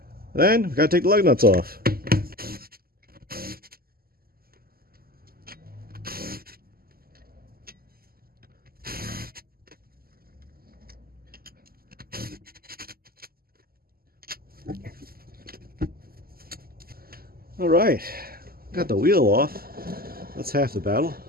Then, we got to take the lug nuts off. All right, got the wheel off. That's half the battle.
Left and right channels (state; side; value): late; left; 0.43 ms